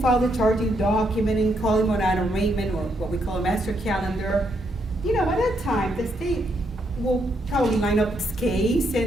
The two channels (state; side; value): normal; both; correlation 0.76